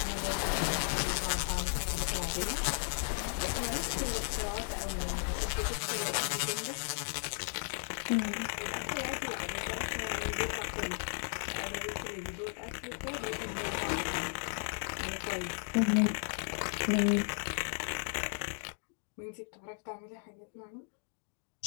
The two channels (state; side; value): silent; right; 54 dB below the other